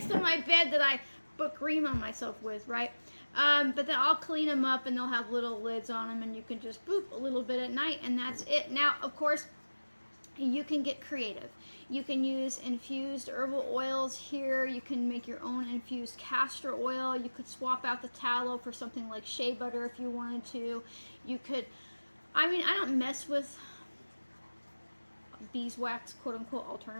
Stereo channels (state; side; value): inverted; both; correlation -1.00